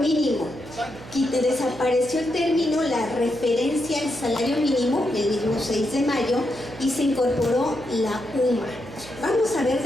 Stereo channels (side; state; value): right; noise; hum, 16 dB below the sound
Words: Desapareció el término, la referencia al salario mínimo, el mismo 6 de mayo, y se incorporó la UMA. Vamos a ver